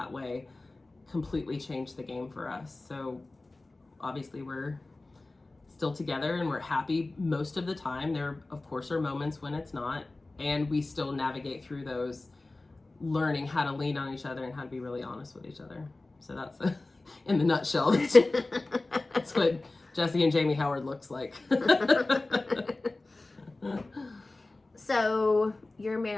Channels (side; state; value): right; quieter; 3.1 dB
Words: way completely changed the game for us. So obviously we're still together and we're happy most of the time. There, of course, are moments when it's not, and we still navigate through those, learning how to lean on each other and how to be really honest with each other. So that's in the nutshell. That's what Jesse and Jamie Howard looks like. So your